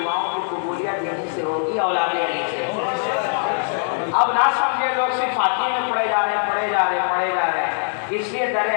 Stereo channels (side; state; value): right; silent; digital silence